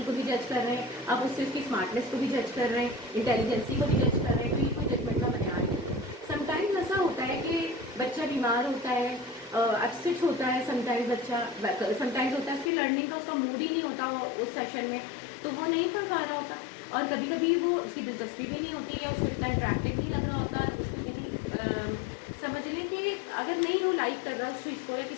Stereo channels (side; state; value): right; drops out; at 12.7 s